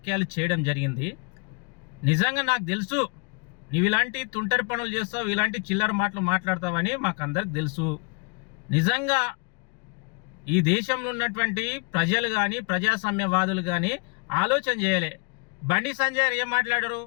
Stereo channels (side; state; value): right; quieter; 33.2 dB